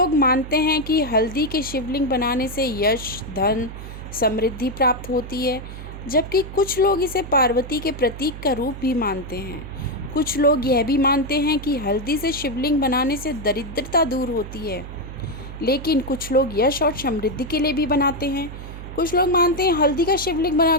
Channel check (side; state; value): right; noise; hum, 11 dB below the sound